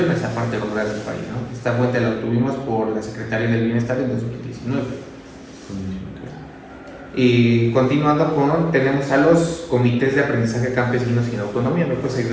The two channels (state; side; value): identical; both; correlation 1.00